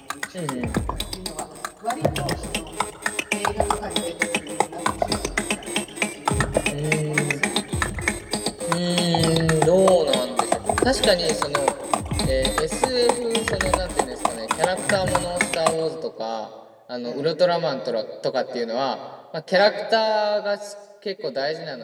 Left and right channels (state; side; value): identical; both; correlation 1.00